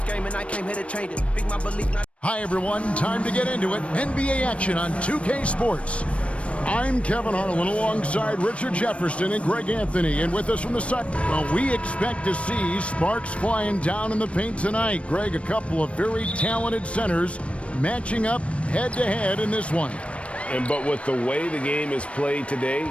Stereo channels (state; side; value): late; right; 0.062 ms